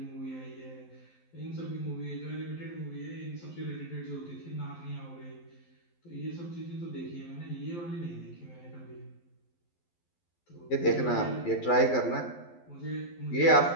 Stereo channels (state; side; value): late; right; 12 ms